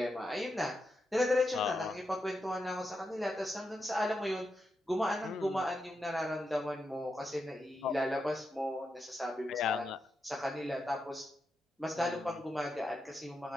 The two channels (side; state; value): both; normal; correlation 0.86